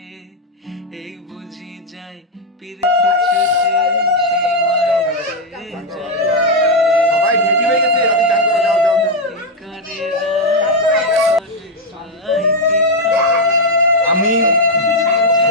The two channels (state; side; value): normal; both; correlation 0.02